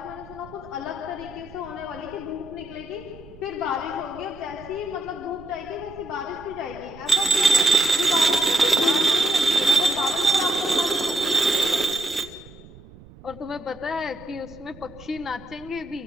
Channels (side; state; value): right; noise; rumble, 20 dB below the sound